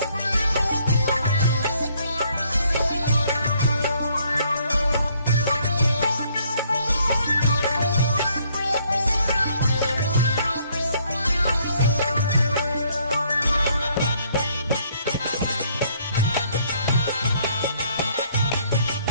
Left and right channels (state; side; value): inverted; both; correlation -0.66